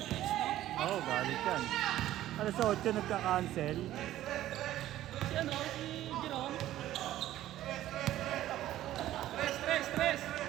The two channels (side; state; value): left; quieter; 13.7 dB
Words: Oo, galit yan. Alas 8 nagka-cancel. Si ano? Si Jerome? Tres.